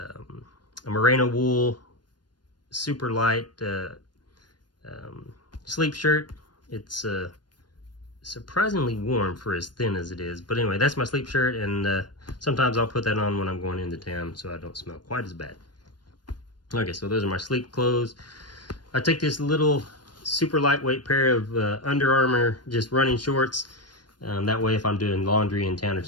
merino wool super light sleep shirt. It's surprisingly warm for as thin as it is, but anyway, that's my sleep shirt, and sometimes I'll put that on when I'm going into town so I don't smell quite as bad. Okay, so those are my sleep clothes. I take this little super lightweight pair of Under Armour just running shorts. That way if I'm doing laundry in town or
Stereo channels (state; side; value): late; right; 0.70 ms